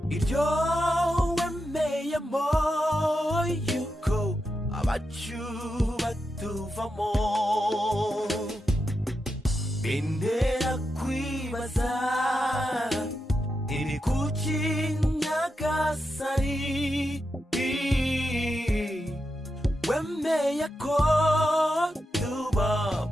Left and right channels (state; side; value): normal; both; correlation 0.87